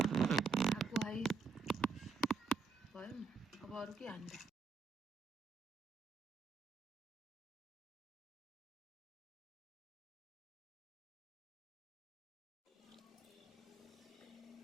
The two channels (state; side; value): quieter; left; 4.5 dB